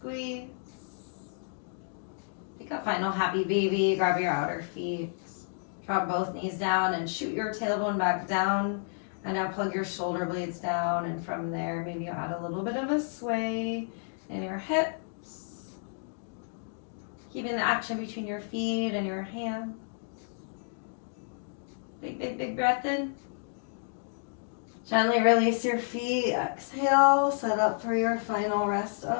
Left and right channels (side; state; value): right; silent; digital silence